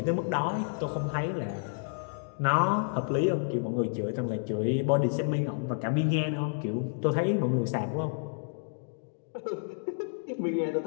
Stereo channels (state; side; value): silent; right; digital silence